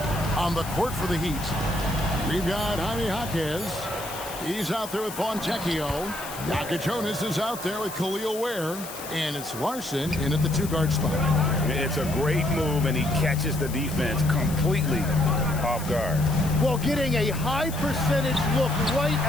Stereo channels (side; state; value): left; noise; hiss, 12 dB below the sound